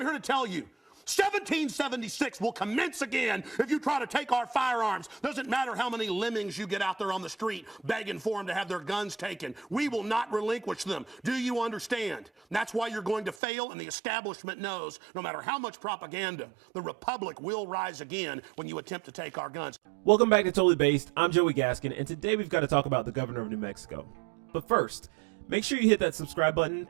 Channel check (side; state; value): left; drops out; at 13.4 s